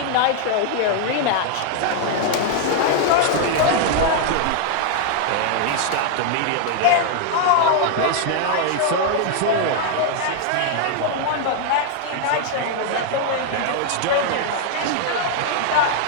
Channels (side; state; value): both; different; correlation 0.00